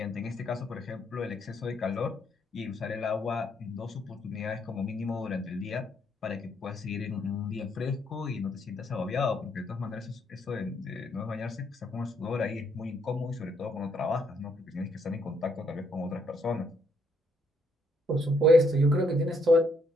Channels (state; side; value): normal; both; correlation 0.72